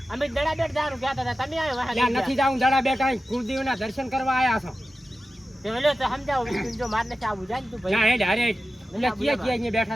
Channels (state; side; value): normal; both; correlation 0.93